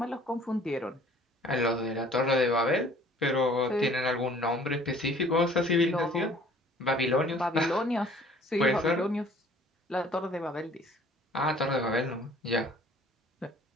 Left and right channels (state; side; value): normal; both; correlation 0.53